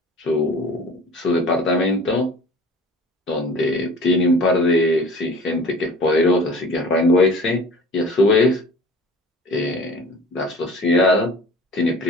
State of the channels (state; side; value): normal; both; correlation 0.44